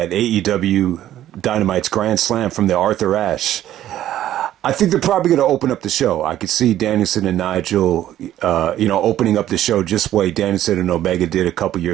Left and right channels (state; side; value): quieter; left; 12.5 dB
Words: AEW Dynamite's Grand Slam from the Arthur Ashe. I think they're probably going to open up the show. I could see Danielson and Nigel, opening up the show just the way Danielson and Omega did a couple